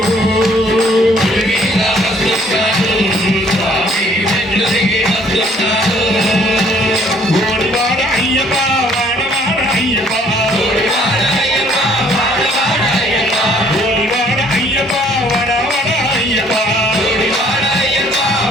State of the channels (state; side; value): normal; both; correlation 0.61